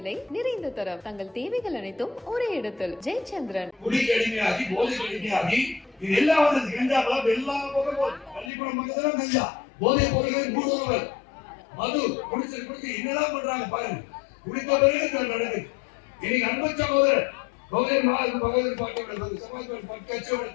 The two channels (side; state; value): right; drops out; at 8.5 s